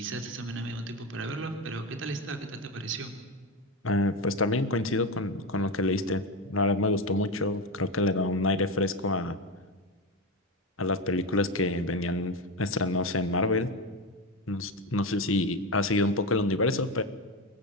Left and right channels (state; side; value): normal; both; correlation 0.16